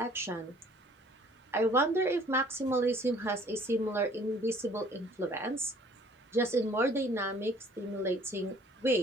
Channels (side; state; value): both; normal; correlation 0.55